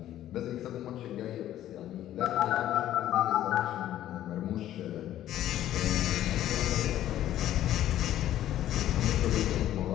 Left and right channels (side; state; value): right; quieter; 12.6 dB